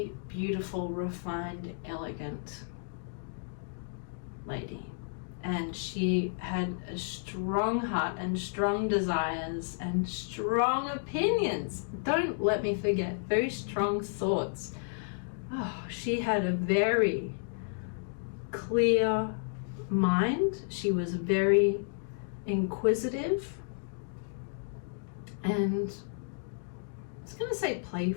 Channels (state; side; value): silent; right; digital silence